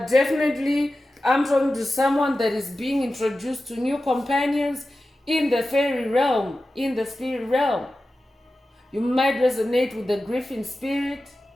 definitely I'm talking to someone that is being introduced to new companions in the fairy realm, in the spirit realm. You might resonate with the griffin spirit.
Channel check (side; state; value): both; normal; correlation 0.94